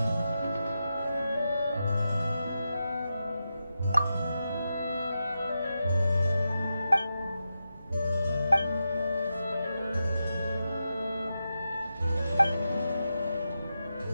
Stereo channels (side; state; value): both; inverted; correlation -0.88